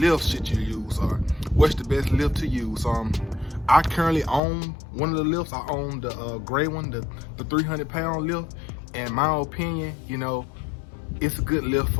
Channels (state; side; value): drops out; right; at 4.4 s